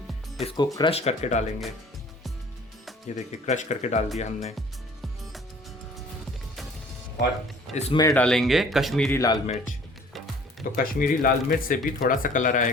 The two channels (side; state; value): both; normal; correlation 0.52